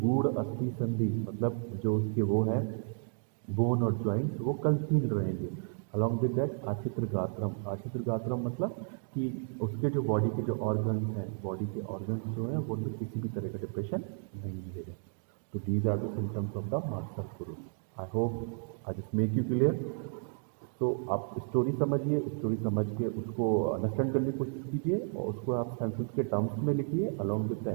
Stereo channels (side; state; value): left; silent; 56 dB below the other